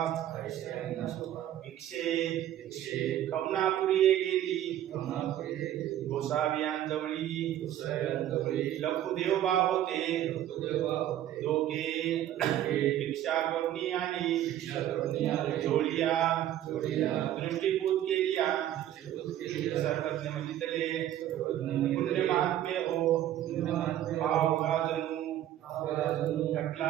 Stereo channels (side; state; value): left; quieter; 12.1 dB